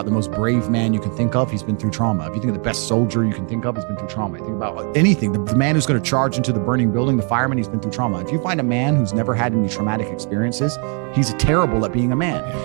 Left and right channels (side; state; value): left; quieter; 37.8 dB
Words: the most brave man you can think of, he's been through trauma. If you think of the best soldier you can think of, he's been through trauma. You think about anything, the man who's going to charge into the burning building, the fireman, he's been through trauma. If you find a man who's never had any traumatic experiences, he's terrible at being a man.